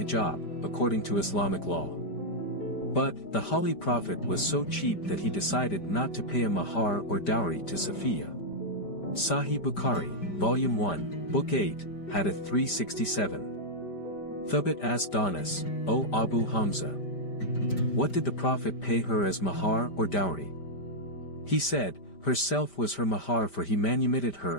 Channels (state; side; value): late; right; 5.1 ms